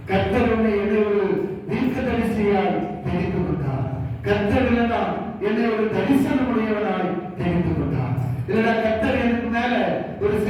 கர்த்தர் என்னை ஒரு தீர்க்க தரிசியாய் தெரிந்து கொண்டார். கர்த்தர் என்னை ஒரு தரிசனம் உடையவனாய் தெரிந்து கொண்டார். இல்லைனா கர்த்தர் எனக்கு மேல ஒரு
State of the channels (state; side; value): identical; both; correlation 1.00